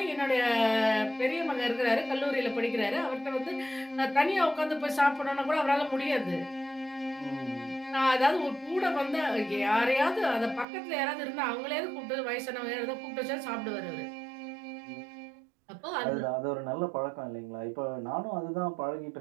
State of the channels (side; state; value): left; drops out; at 10.7 s